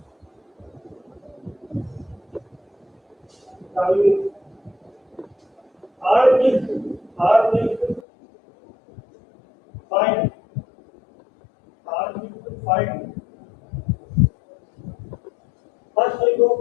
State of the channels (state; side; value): drops out; right; at 8.0 s